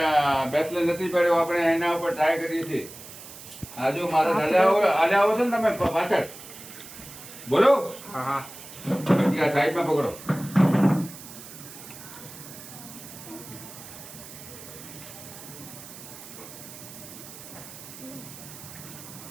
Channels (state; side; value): noise; right; hiss, 15 dB below the sound